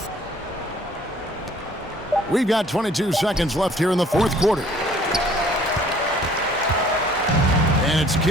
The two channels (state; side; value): normal; both; correlation 0.56